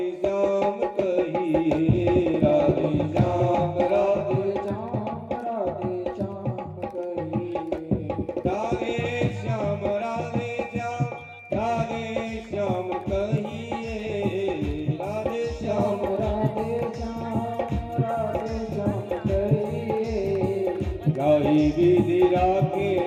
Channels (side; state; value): both; identical; correlation 1.00